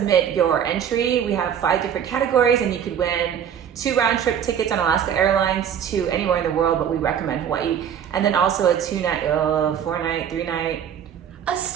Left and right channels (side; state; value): left; quieter; 8.8 dB